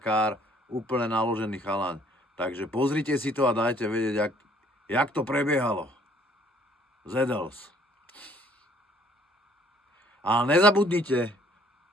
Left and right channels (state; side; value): normal; both; correlation 0.60